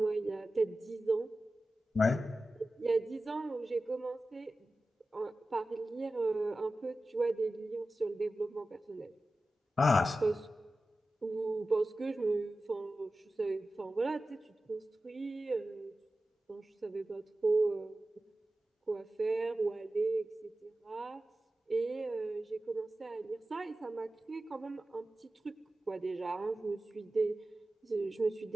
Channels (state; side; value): normal; both; correlation 0.94